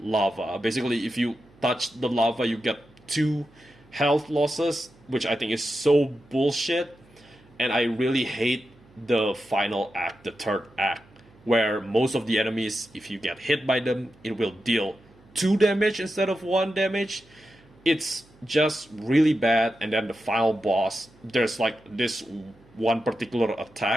lava. Basically, if you touch the lava, you get 2 health losses, which I think is so bullshit. And I really hate the final act, the third act, where most of the enemies, if you get hit by them, it will deal 2 damage instead of 1 damage. It's just really bad. And then the final boss, there's like this one particular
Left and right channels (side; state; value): right; noise; hum, 28 dB below the sound